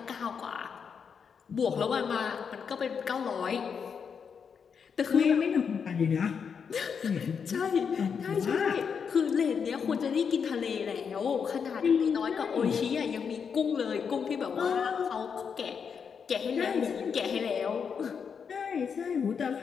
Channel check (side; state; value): right; quieter; 6.5 dB